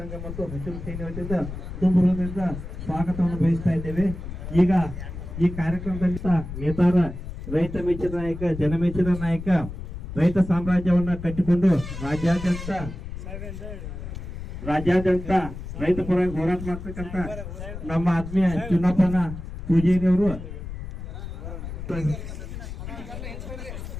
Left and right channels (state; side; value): noise; left; rumble, 9 dB below the sound